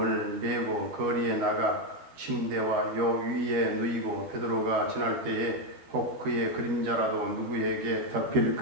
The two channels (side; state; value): left; late; 13 ms